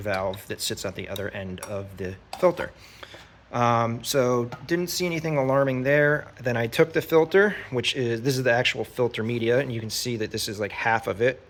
that sits at the other end of the filter. So didn't see anything alarming there. Then I took the filter, this is the actual filter media, and you can see that this is like half of it.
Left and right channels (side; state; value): both; identical; correlation 1.00